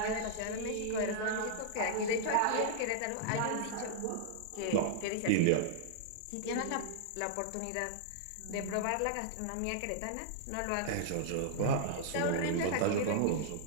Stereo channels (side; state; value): both; different; correlation -0.01